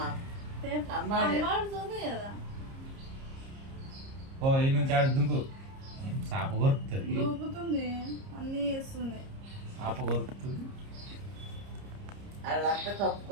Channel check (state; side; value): late; left; 30 ms